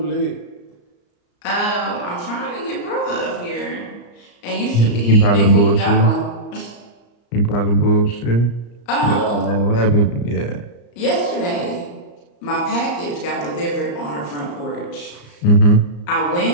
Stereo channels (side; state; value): right; late; 34 ms